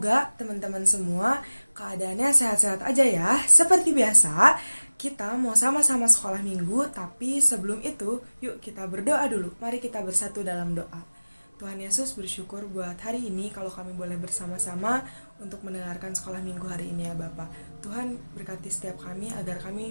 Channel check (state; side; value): inverted; both; correlation -1.00